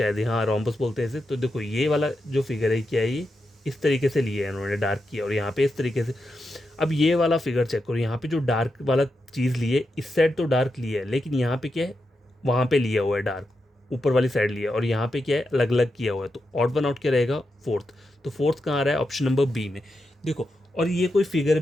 हाँ रोम्बस बोलते हैं इसे। तो देखो ये वाला जो फिगर है क्या है, ये इस तरीके से लिया है इन्होंने, डार्क किया, और यहाँ पे इस तरीके से। अब ये वाला फिगर चेक करो, यहाँ पे जो डार्क वाला चीज़ लिए, इस साइड तो डार्क लिया है, लेकिन यहाँ पे क्या है, वहाँ पे लिया हुआ है डार्क, ऊपर वाली साइड लिया, और यहाँ पे क्या है, अलग अलग किया हुआ है। तो ऑड वन आउट क्या रहेगा, फोर्थ। तो फोर्थ कहाँ आ रहा है, ऑप्शन नंबर बी में, देखो। और ये कोई फिगर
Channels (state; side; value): normal; both; correlation 0.87